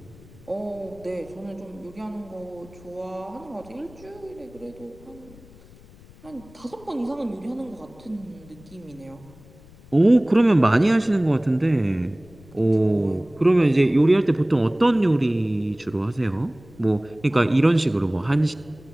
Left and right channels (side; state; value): left; noise; rumble, 23 dB below the sound